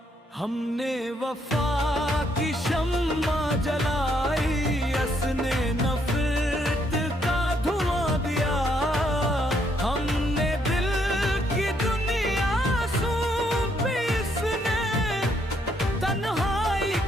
हमने वफा की शम्मा जलाई, असने नफरत का धुआं दिया। हमने दिल की दुनिया सौंपी, इसने तन्हाई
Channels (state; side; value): normal; both; correlation 0.72